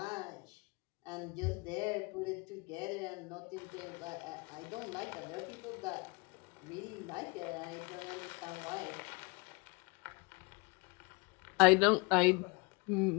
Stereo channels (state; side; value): quieter; right; 29.0 dB